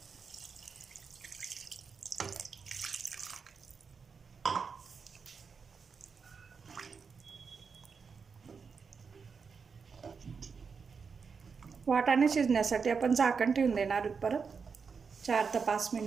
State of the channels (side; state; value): left; quieter; 5.6 dB